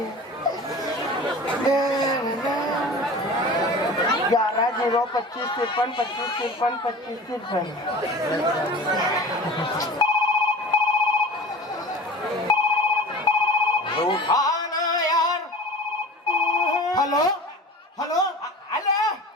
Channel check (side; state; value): both; normal; correlation 0.37